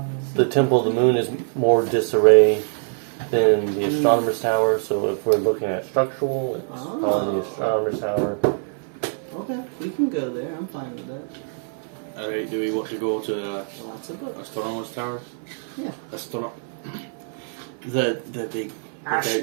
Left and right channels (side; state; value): left; silent; 60 dB below the other